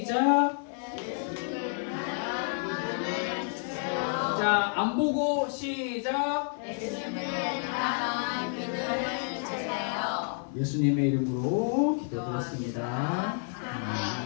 자, 안 보고 시작. 예수님의 이름으로 기도드렸습니다.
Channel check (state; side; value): silent; right; 58 dB below the other